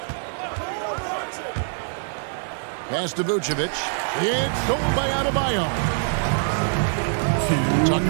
Pass to Vucevic. It's stolen by Adebayo.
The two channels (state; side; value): silent; left; digital silence